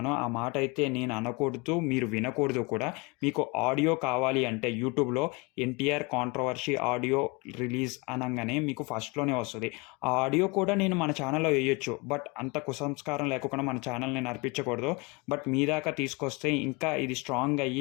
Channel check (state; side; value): quieter; right; 27.3 dB